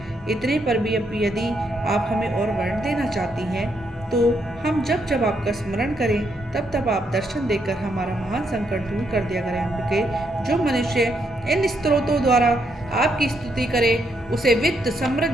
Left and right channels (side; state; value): both; normal; correlation 0.77